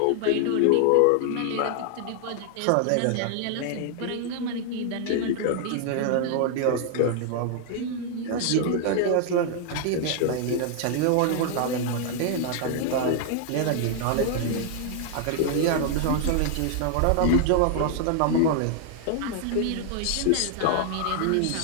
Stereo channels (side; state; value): both; different; correlation 0.00